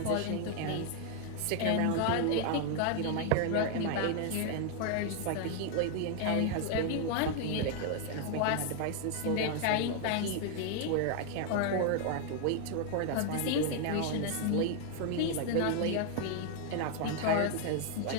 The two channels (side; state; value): both; different; correlation 0.00